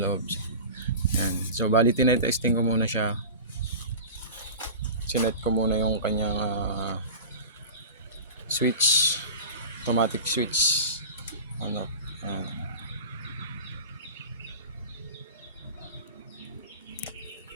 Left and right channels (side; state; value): both; inverted; correlation -0.32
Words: Yan. So bali tinetesting ko muna siya. Sinet ko muna yung kanyang switch, automatic switch. Ano? Yan.